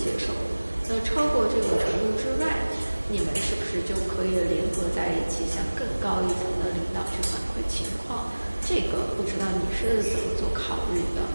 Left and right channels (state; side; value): inverted; both; correlation -1.00